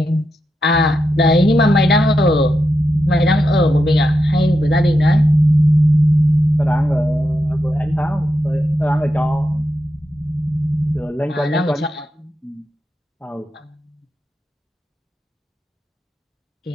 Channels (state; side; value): normal; both; correlation 0.86